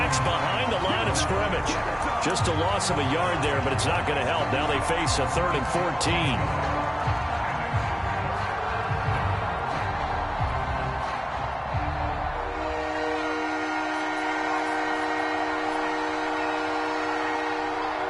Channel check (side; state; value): both; identical; correlation 1.00